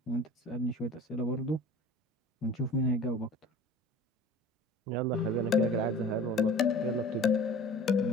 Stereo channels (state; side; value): normal; both; correlation 0.41